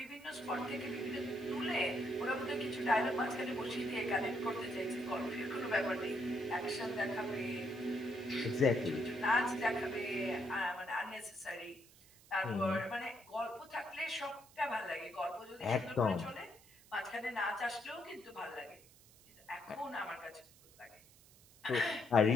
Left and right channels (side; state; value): right; noise; hiss, 24 dB below the sound